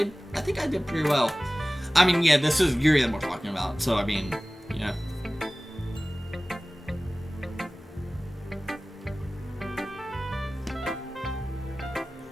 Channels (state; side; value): normal; both; correlation 0.98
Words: did pretty well. I mean, yeah, this is Yuri that we're talking about, so I mean, yeah.